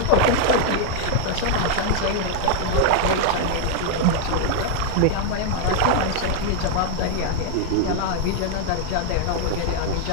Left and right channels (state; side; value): different; both; correlation 0.00